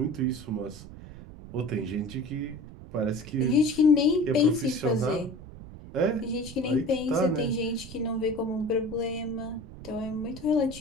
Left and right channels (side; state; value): right; noise; rumble, 15 dB below the sound